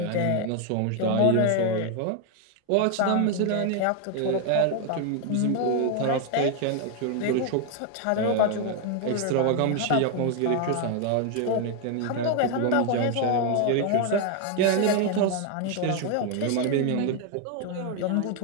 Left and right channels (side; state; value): both; different; correlation 0.01